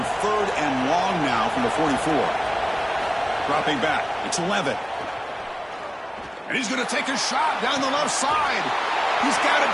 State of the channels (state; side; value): identical; both; correlation 1.00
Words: 3rd and long now from the 44? Dropping back. It's 11. And he's going to take a shot down the left side. He's got it